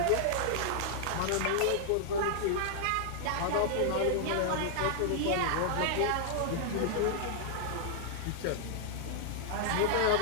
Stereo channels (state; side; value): different; both; correlation -0.01